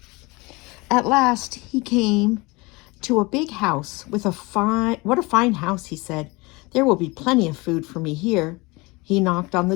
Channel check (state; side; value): quieter; right; 24.7 dB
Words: At last, he came to a big house with what a fine house, he said. There will be plenty of food for me here. He knocked on the